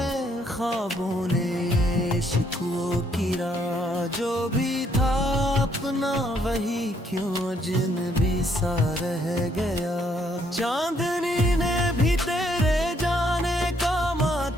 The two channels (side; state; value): both; normal; correlation 0.70